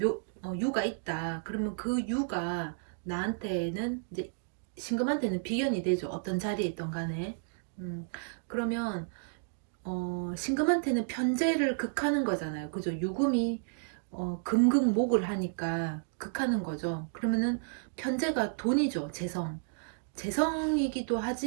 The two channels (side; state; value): left; silent; digital silence